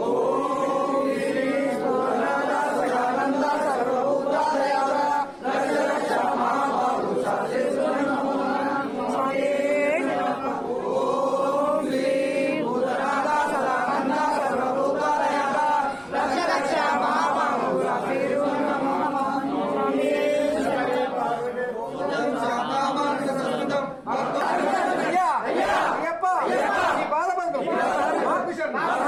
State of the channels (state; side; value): identical; both; correlation 1.00